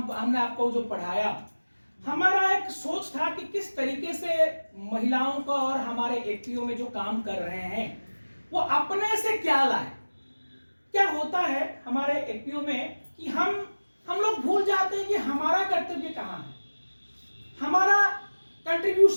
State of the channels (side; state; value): both; inverted; correlation -1.00